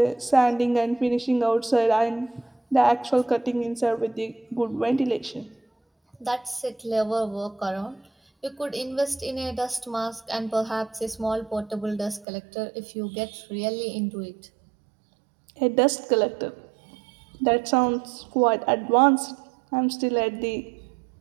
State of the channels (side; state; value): left; drops out; at 12.2 s